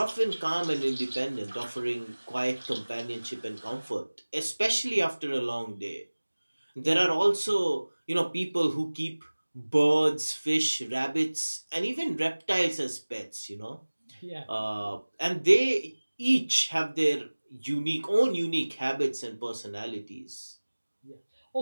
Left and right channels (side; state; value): both; inverted; correlation -1.00